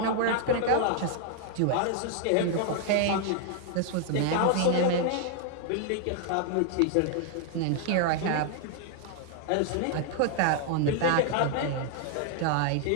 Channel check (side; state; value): both; different; correlation 0.00